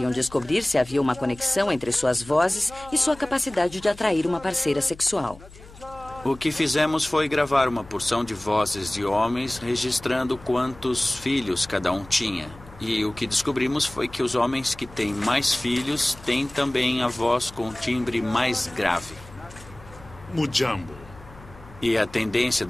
descobrir se havia uma conexão entre suas vozes e sua capacidade de atrair uma parceira sexual. O que fizemos foi gravar uma porção de vozes de homens, registrando quantos filhos cada um tinha. E o que descobrimos foi que os homens que têm mais filhos têm também a voz com timbre mais grave. Mujambo. E a tendência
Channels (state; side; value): noise; left; hum, 20 dB below the sound